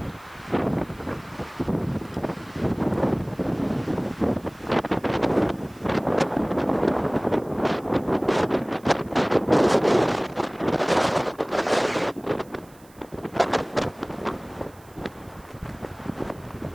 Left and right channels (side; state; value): right; noise; hiss, 27 dB below the sound